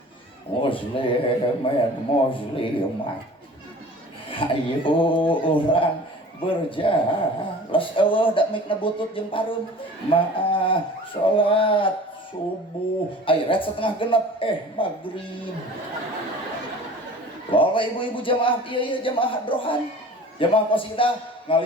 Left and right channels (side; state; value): both; normal; correlation 0.43